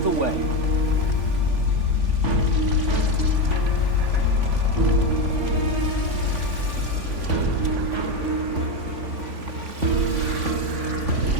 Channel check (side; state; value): left; late; 3.5 ms